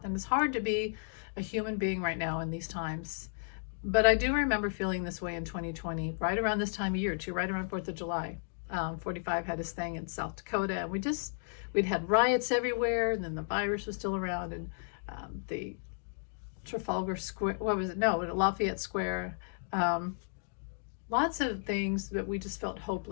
and it's hard to be a human being right now in these times. But I do remember feeling this way in 2020, right around this time of year, too, right around 4th of July. 45 had his thing in South Dakota, and we'd had riots everywhere, and then the virus was still around, and the Trafalgar Square, what was it? No, Lafayette Square. Um, Lots of things that we just felt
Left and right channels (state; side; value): silent; right; digital silence